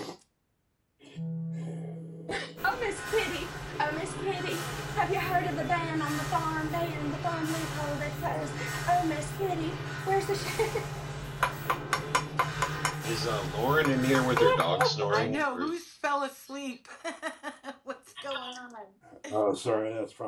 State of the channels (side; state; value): both; identical; correlation 1.00